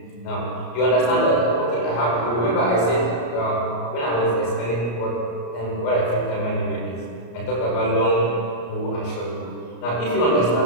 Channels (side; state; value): right; late; 34 ms